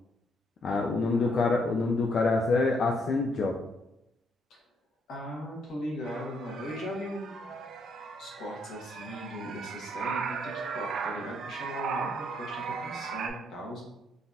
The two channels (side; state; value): both; normal; correlation 0.72